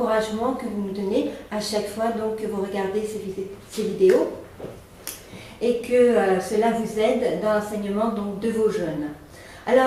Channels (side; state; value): both; identical; correlation 1.00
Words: que vous nous donnez à chaque fois donc, que vous regardez ces vidéos et que cela vous aide dans l'enseignement donc, de vos jeunes.